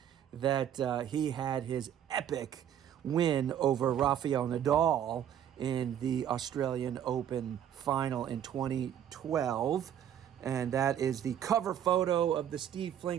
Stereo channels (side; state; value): left; quieter; 10.0 dB